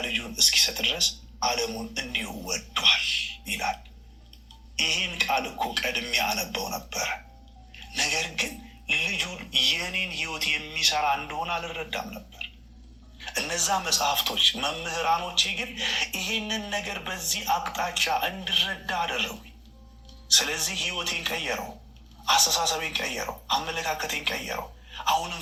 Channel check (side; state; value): both; identical; correlation 1.00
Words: ልጁን እስኪሰጥ ድረስ ዓለሙን እንዲሁ ወዷል ይላል። ይህን ቃል እኮ ቀድሜ አነበው ነበረ። ነገር ግን ልጁን የኔን ህይወት የሚሰራ እንደሆነ አልረዳም ነበር። እነዛ መጽሐፍቶች መምህራኖቼ ግን ይህንን ነገር በዚህ አቅጣጫ እንድረዳ አደረጉኝ። ስለዚህ ህይወቴን ቀየረው፣ አስተሳሰቤን ቀየረው፣ አመለካከቴን ቀየረው። አሁንም